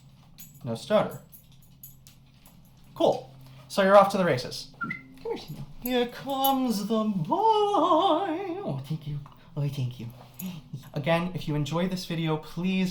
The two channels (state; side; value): identical; both; correlation 1.00